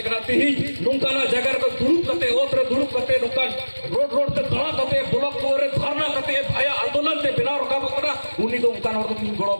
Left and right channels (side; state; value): both; inverted; correlation -1.00